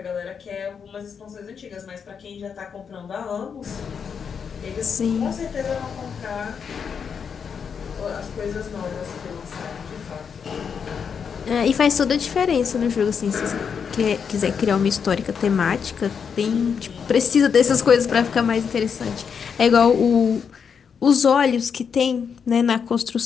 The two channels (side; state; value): right; quieter; 6.7 dB